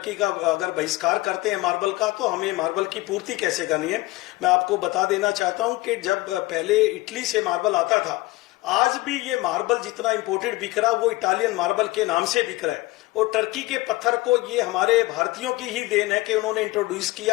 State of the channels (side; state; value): right; quieter; 20.1 dB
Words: का अगर बहिष्कार करते हैं मार्बल का, तो हमें मार्बल की पूर्ति कैसे करनी है। मैं आपको बता देना चाहता हूं कि जब पहले इटली से मार्बल आता था, आज भी ये मार्बल जितना इंपोर्टेड बिक रहा वो इटालियन मार्बल के नाम से बिक रहा है। और टर्की के पत्थर को ये हमारे भारतीयों की ही देन है कि उन्होंने इंट्रोड्यूस